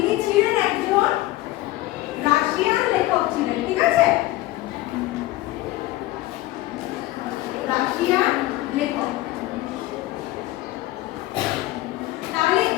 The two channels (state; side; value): quieter; right; 17.1 dB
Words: ছিলেন একজন রাশিয়ান লেখক ছিলেন, ঠিক আছে? রাশিয়ান লেখক। তাহলে